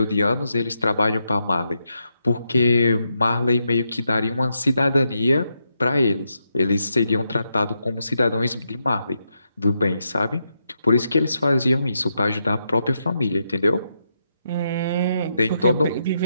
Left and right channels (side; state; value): both; inverted; correlation -0.82